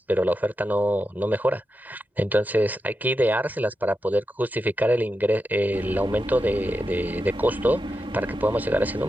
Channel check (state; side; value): normal; both; correlation 0.89